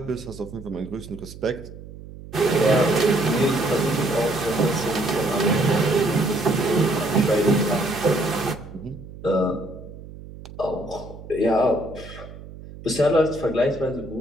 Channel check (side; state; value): right; noise; hum, 15 dB below the sound